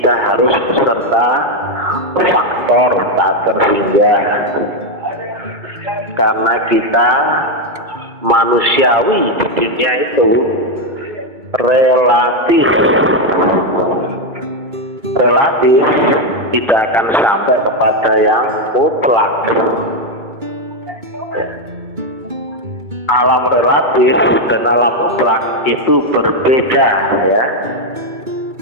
harus beserta faktor tak terhingga. Karena kita manusiawi di dunia itu relatif tidak akan sampai kepada yang mutlak. Alam relatif dan alam mutlak itu berbeda, ya.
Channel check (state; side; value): late; left; 2.3 ms